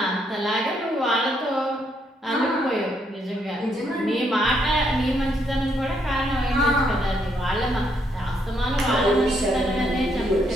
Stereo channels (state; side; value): normal; both; correlation 0.74